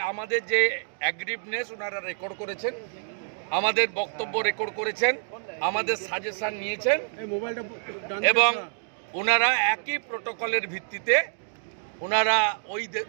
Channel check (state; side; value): silent; left; digital silence